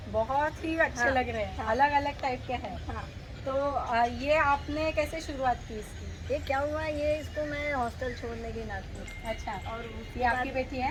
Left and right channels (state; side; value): identical; both; correlation 1.00